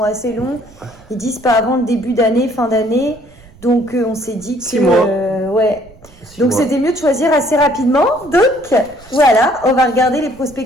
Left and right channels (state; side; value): noise; right; rumble, 25 dB below the sound